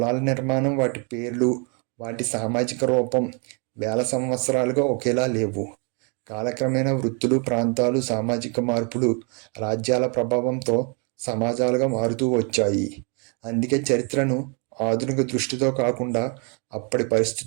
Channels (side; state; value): left; quieter; 36.2 dB